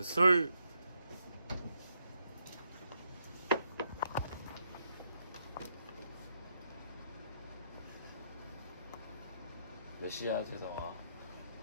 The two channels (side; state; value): both; inverted; correlation -0.78